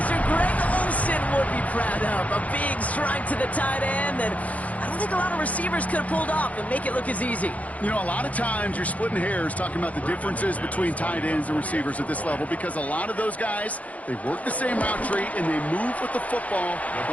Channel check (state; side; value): late; right; 0.070 ms